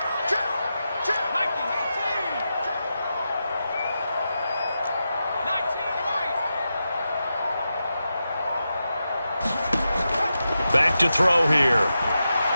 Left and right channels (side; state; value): both; inverted; correlation -0.89